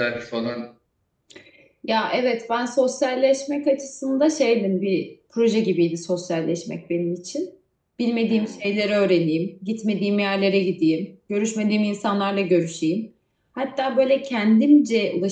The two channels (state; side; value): identical; both; correlation 1.00